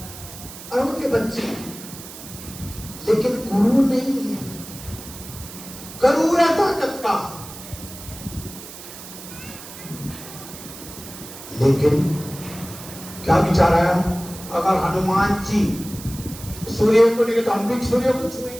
और उनके बच्चे, लेकिन गुरु नहीं है। करूर है ताकत का, लेकिन क्या विचार आया, अगर हनुमान जी सूर्य को नहीं तो हम भी सूर्य को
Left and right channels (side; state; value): right; noise; hiss, 14 dB below the sound